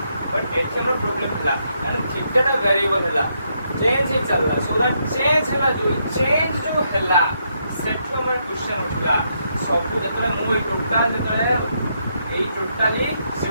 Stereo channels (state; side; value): inverted; both; correlation -0.78